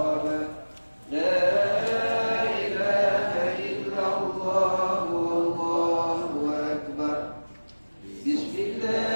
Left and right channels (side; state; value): both; inverted; correlation -1.00